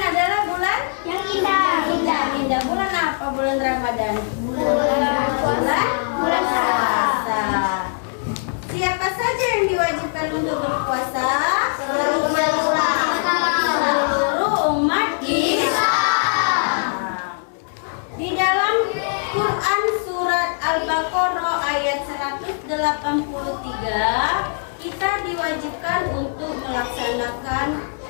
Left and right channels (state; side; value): silent; right; digital silence